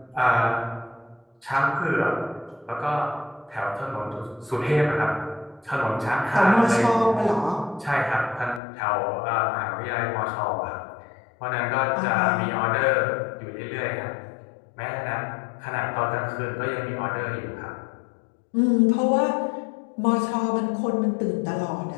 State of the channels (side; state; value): right; drops out; at 8.6 s